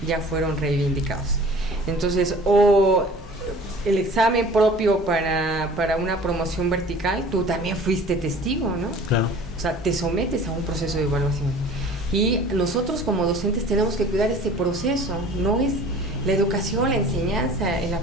ya fueron reivindicados. Entonces, el examen propio para una promoción vertical, tú también fuiste testigo, ¿no? Claro. O sea, te sometes a un proceso de evaluación. Y nosotros como docentes tenemos que cuidar ese proceso. No es la educación, la enseñanza, el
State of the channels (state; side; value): normal; both; correlation 0.46